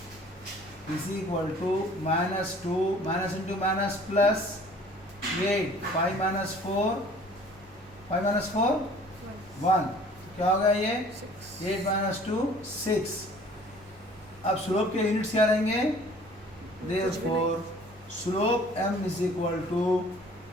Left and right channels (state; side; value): noise; right; hum, 25 dB below the sound